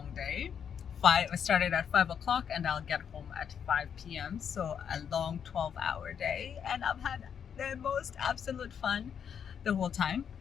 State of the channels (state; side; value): quieter; right; 7.8 dB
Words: day. I started at 5 o'clock and I'll get home at 5 p.m. So a long 12-hour day, and I've had the most absolute fun the whole time.